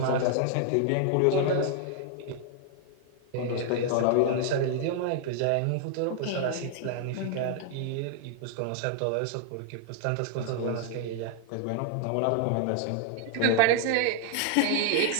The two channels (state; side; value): different; both; correlation 0.00